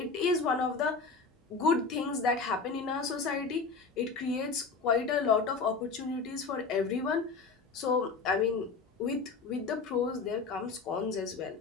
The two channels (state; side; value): quieter; right; 4.5 dB